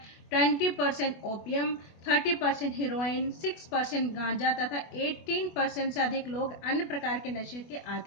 20% ओपियम, 30% हीरोइन, 6% गांजा तथा 18% से अधिक लोग अन्य प्रकार के नशे के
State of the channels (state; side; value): late; right; 24 ms